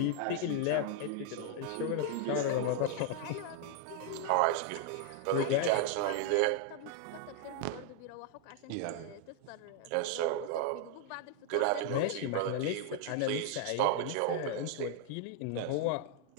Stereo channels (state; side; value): different; both; correlation 0.00